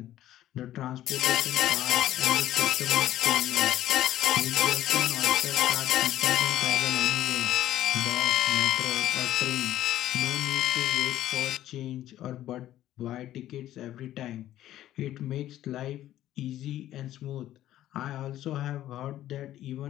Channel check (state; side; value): quieter; right; 13.2 dB